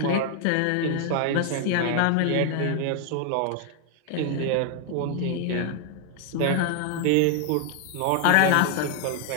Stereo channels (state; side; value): different; both; correlation 0.00